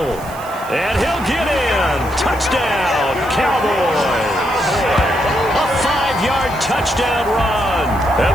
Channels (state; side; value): noise; right; hiss, 20 dB below the sound